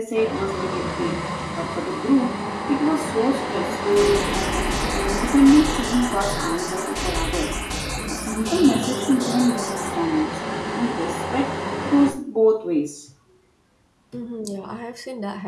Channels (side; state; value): both; identical; correlation 1.00